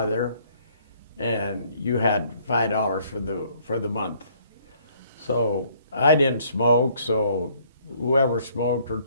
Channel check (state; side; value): inverted; both; correlation -0.63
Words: and you had $5 for the month. So I didn't smoke, so whoever smoked or